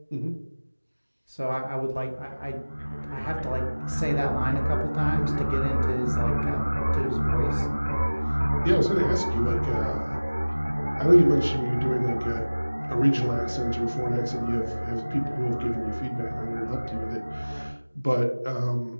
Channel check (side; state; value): both; inverted; correlation -1.00